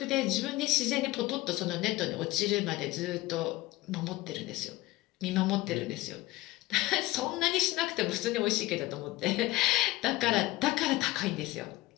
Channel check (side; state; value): right; quieter; 18.2 dB